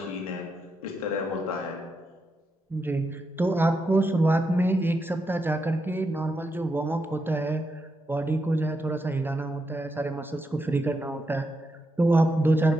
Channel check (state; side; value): normal; both; correlation 0.84